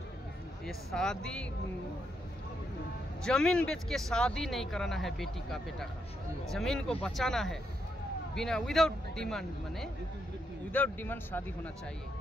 ये शादी जमीन बेच के शादी नहीं कराना है बेटी का बेटा का, जमीन को बचाना है बिना विदाउट डिमांड, माने विदाउट डिमांड शादी होना चाहिए।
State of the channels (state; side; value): normal; both; correlation 0.79